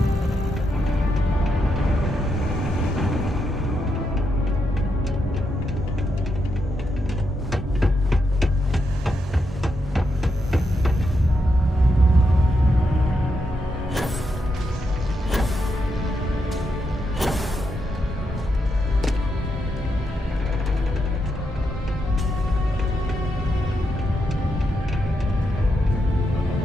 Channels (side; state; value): both; normal; correlation 0.82